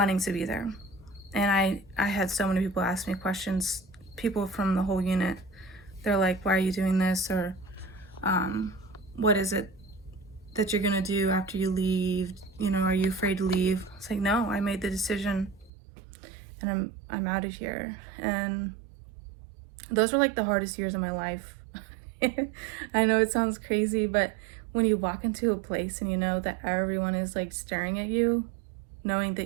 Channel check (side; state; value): left; drops out; at 15.7 s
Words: to be there. And I had so many people ask me questions, people from the whole unit. They're like, why are you doing this? Or what is it that you're gonna do after you leave? You know, are you afraid to leave? It's like, no, I made the decision and I'm out of here. And those were like the hardest years of my life. I know it sounds crazy, but when you walk into a place and you know that everyone is like staring at you, knowing